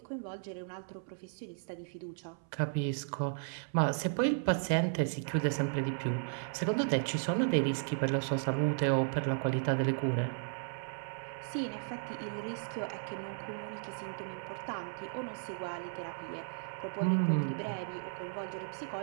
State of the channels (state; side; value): silent; left; 54 dB below the other